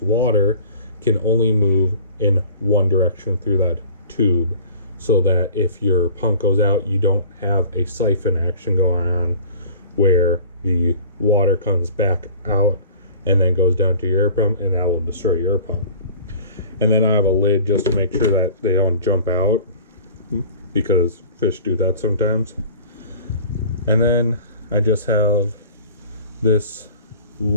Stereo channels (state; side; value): inverted; both; correlation -0.45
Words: water, can only move in one direction through that tube, so that if your pump goes out, you don't have a siphon action going on where the water comes back out and then goes down to your air pump, and that will destroy your pump. And then I have a lid just to make sure that they don't jump out, because fish do that sometimes. And then I just have this